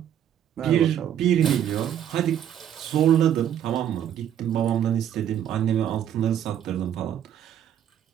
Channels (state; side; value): quieter; left; 10.1 dB